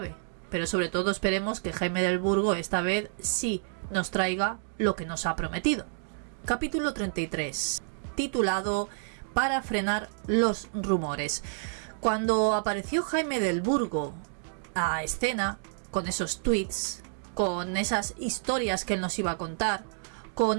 pero sobre todo esperemos que Jaime Del Burgo esta vez sí nos traiga lo que nos ha prometido. Capítulo 33, titulado Para frenar los rumores. Cuando apareció Jaime Del Burgo a escena, con esos tweets, con esas historias que él nos iba a contar,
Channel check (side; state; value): left; silent; digital silence